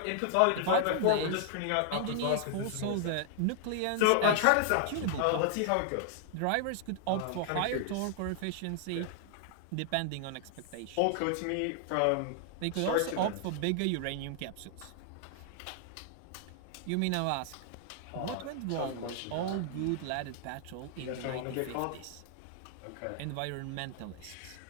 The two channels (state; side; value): different; both; correlation 0.00